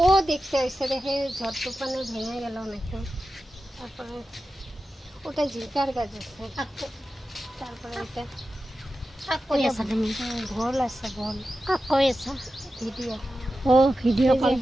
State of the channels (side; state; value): both; normal; correlation 0.93